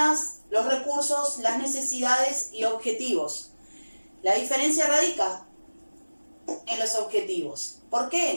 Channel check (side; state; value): both; inverted; correlation -1.00